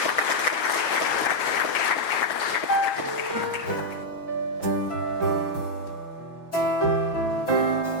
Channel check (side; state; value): right; late; 6.1 ms